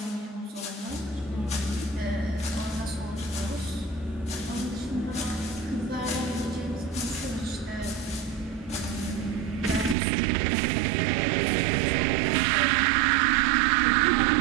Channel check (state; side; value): drops out; left; at 10.0 s